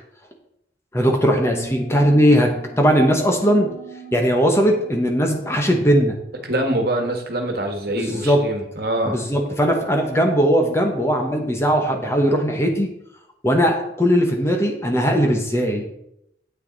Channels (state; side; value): normal; both; correlation 0.67